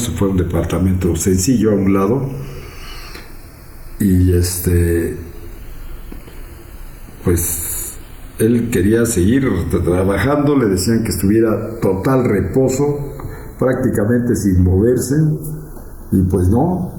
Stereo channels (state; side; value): identical; both; correlation 1.00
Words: fue a un departamento sencillo a un lado, y pues él quería seguir trabajando. Le decían que estuviera total reposo, prácticamente sin moverse, y pues